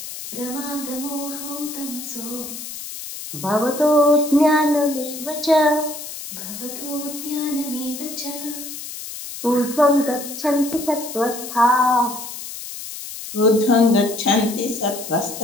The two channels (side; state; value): left; noise; hiss, 10 dB below the sound